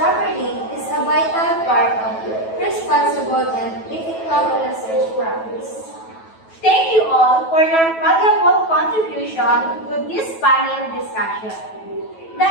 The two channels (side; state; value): right; late; 9.2 ms